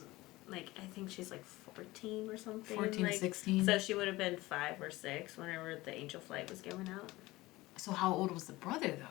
Like, I think she's like 14 or something. 14 like, to 16. So she would have been 5 or 6 whenever the angel flight was going out. So how old was the brother,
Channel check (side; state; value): right; quieter; 19.5 dB